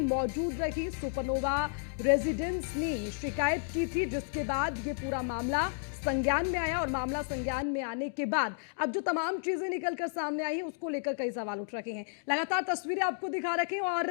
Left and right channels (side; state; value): right; silent; digital silence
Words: मौजूद रही। सुपरनोवा रेजिडेंस ने शिकायत की थी, जिसके बाद ये पूरा मामला संज्ञान में आया। और मामला संज्ञान में आने के बाद अब जो तमाम चीजें निकलकर सामने आई हैं उसको लेकर कई सवाल उठ रखे हैं। लगातार तस्वीरें आपको दिखा रखे हैं,